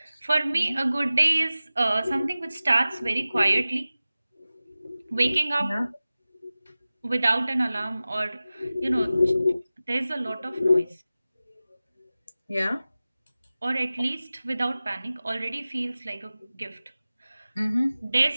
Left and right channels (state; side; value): inverted; both; correlation -0.96